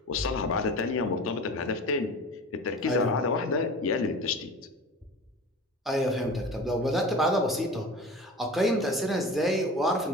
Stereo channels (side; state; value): both; normal; correlation 0.36